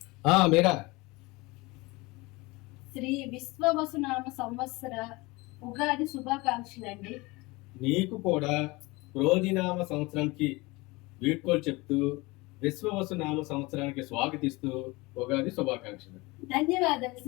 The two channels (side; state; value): right; quieter; 23.4 dB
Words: మీరా శ్రీ విశ్వవసునామ సంవత్సర ఉగాది శుభాకాంక్షలు అండి. నీకు కూడా క్రోధినామ సంవత్సరానికి వీడ్కోలు చెప్తూ విశ్వవసునామ సంవత్సరానికి స్వాగతిస్తూ ఉగాది శుభాకాంక్షలు. ధన్యవాదాలు